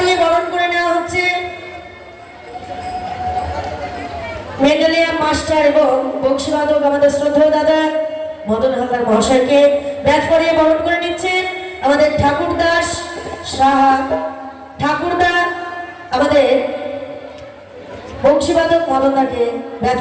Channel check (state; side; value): identical; both; correlation 1.00